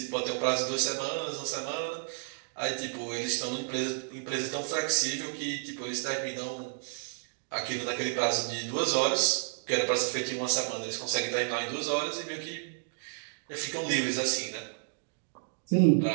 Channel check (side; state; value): left; silent; digital silence